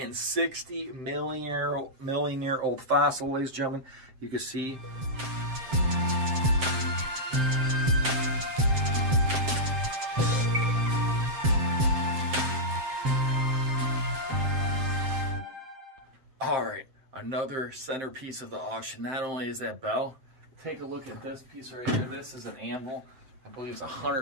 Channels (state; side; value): late; left; 7.6 ms